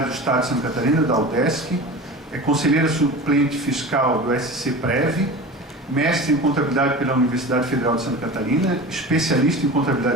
do Estado de Santa Catarina, da UDESC, é conselheira suplente fiscal do SC-Prev, mestre em contabilidade pela Universidade Federal de Santa Catarina, especialista em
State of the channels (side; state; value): both; normal; correlation 0.33